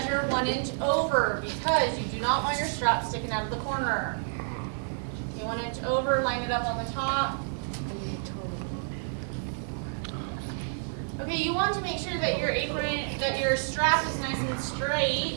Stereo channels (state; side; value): silent; left; digital silence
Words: 1 inch over because you do not want your strap sticking out of the corner. Okay, 1 inch over, line it up on the top. Okay, you want to make sure that your apron, that your strap is nice and